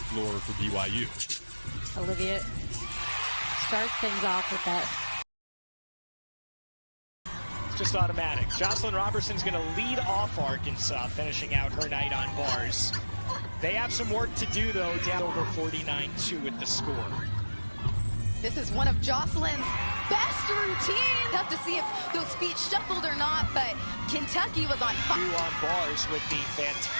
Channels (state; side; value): inverted; both; correlation -1.00